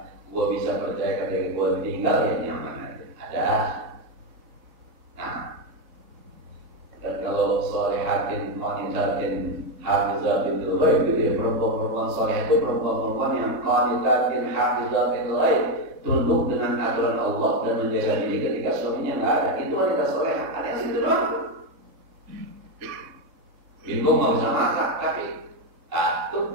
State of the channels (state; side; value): late; left; 3.6 ms